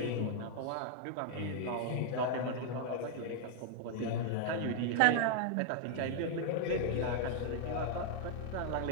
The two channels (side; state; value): both; different; correlation 0.00